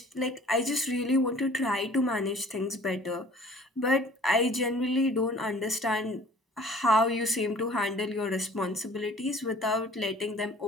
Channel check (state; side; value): normal; both; correlation 0.50